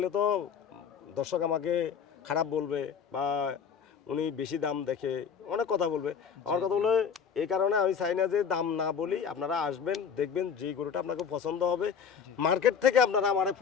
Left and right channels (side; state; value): right; quieter; 6.9 dB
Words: তো দর্শক আমাকে খারাপ বলবে, বা উনি বেশি দাম দেখে অনেক কথা বলবে। আমার কথা হলো এই কারণে আমি চাই না যে দাম না বলি, আপনারা আসবেন, দেখবেন যেই গরুটা আপনাকে পছন্দ হবে মার্কেট থেকে আপনারা আমার